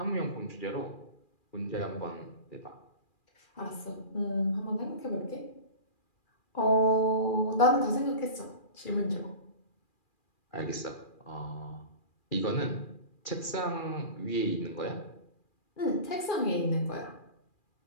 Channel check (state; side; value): late; right; 2.4 ms